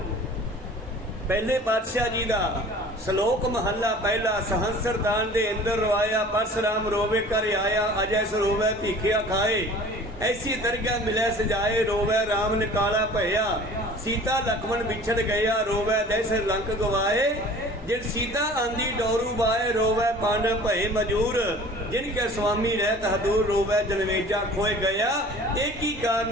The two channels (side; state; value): both; normal; correlation 0.45